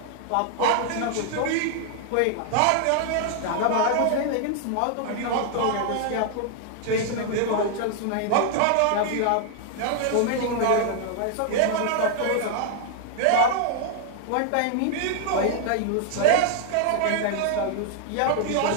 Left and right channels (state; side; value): different; both; correlation -0.01